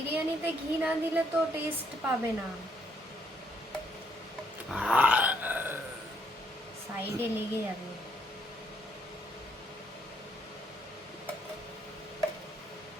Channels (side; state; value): both; normal; correlation 0.71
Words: ঘি না দিলে তো টেস্ট পাবে না, সাইডে লেগে যাবে।